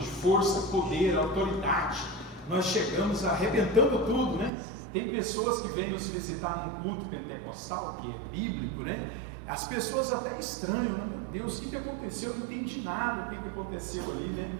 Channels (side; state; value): left; drops out; at 4.5 s